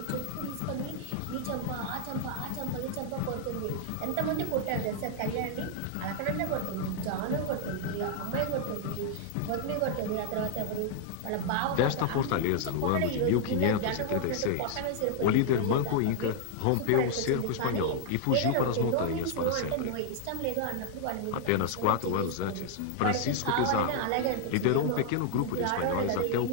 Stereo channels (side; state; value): both; different; correlation -0.01